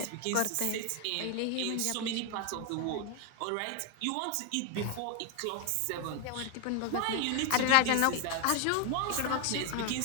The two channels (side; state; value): both; different; correlation 0.00